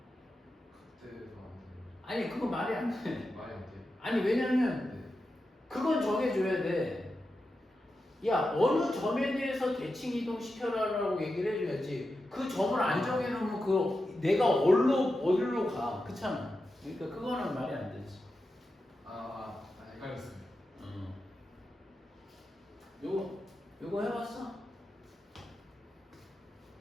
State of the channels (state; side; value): normal; both; correlation 0.90